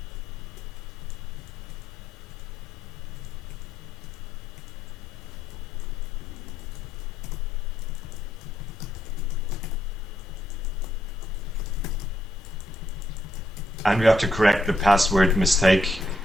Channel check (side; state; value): both; normal; correlation 0.77